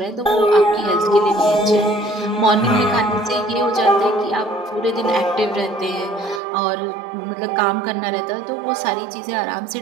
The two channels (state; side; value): drops out; left; at 6.4 s